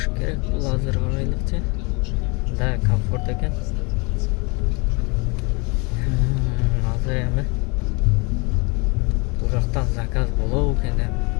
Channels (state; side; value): quieter; right; 29.5 dB